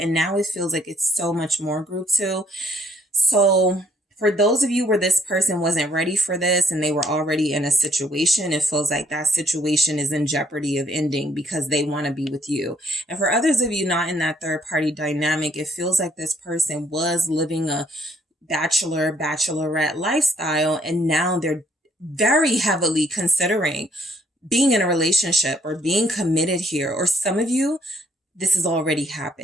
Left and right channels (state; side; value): normal; both; correlation 0.66